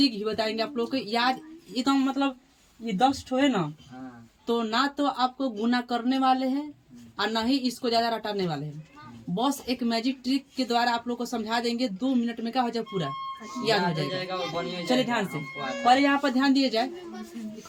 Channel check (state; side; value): identical; both; correlation 1.00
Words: भी बताएंगे आप लोग को। याद एकदम मतलब ये 10 ठो है ना, तो ना तो आपको गुना करने वाले हैं और ना ही इसको ज्यादा रटाने वाले हैं। बस एक मैजिक ट्रिक के द्वारा आप लोग को समझा देंगे, 2 मिनट में क्या हो जाए, पूरा याद हो जाएगा। चलिए ध्यान से, पर यहाँ पर ध्यान दिए जाए।